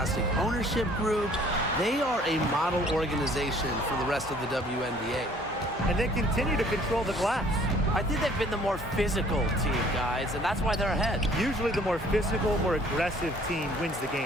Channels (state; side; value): normal; both; correlation 0.56